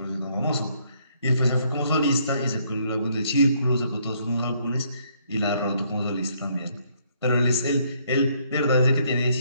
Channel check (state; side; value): inverted; both; correlation -0.69